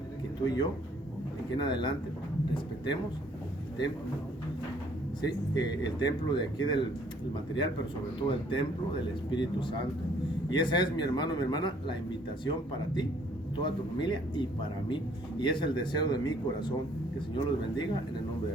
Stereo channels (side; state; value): both; normal; correlation 0.61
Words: que tú y yo, de aquí en adelante, respetemos el templo, ¿sí? El templo de aquí del material, pero sobre todo el templo del Espíritu Santo. Y esa es, mi hermano, mi hermana, la invitación para ti, toda tu familia y para mí. Y es el deseo de mi corazón. Que el Señor los bendiga en el nombre